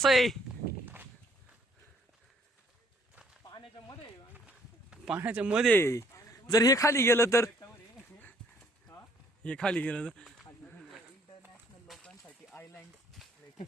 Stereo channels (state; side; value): normal; both; correlation 0.64